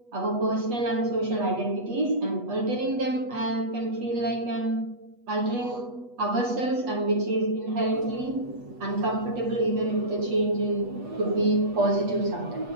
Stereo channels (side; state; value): left; late; 8.2 ms